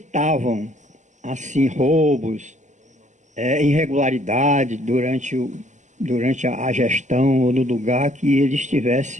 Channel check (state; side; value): late; left; 0.35 ms